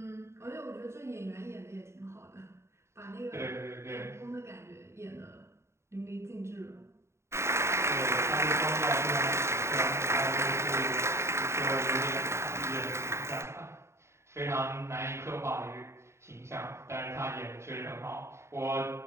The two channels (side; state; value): left; late; 0.13 ms